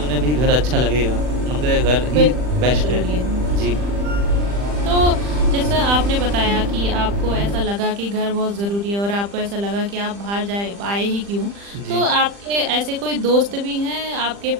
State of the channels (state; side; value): late; left; 40 ms